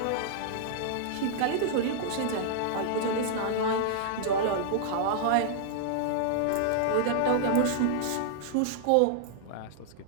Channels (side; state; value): both; different; correlation -0.01